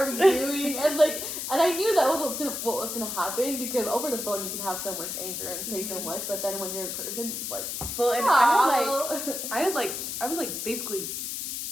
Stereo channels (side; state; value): left; noise; hiss, 4 dB below the sound